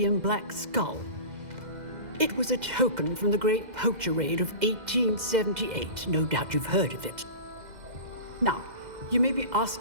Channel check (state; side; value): late; left; 2.0 ms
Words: black skull. It was a token from the Great Poacher Raid of 1878. No doubt you've heard of it. Now, you may be